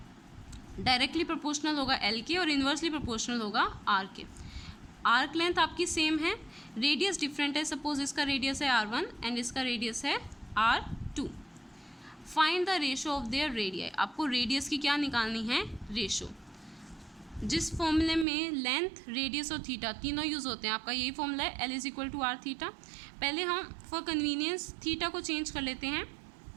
डायरेक्टली प्रोपोर्शनल होगा एल के और इन्वर्सली प्रोपोर्शनल होगा आर के। आर्क लेंथ आपकी सेम है, रेडियस डिफरेंट है, सपोज इसका रेडियस है R1 एंड इसका रेडियस है R2। Find the ratio of their radii, आपको रेडियस की क्या निकालनी है रेशो। जिस फॉर्मूले में लेंथ रेडियस और थीटा तीनों यूज़ होते हैं, आपका यही फॉर्मूला है L = R थीटा। पहले हम फॉर कन्वीनियंस थीटा को चेंज कर लेते हैं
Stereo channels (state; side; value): drops out; left; at 18.2 s